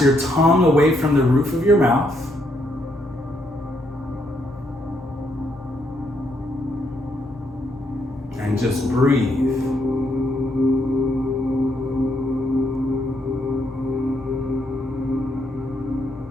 your tongue away from the roof of your mouth. And just breathe.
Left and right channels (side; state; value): both; normal; correlation 0.75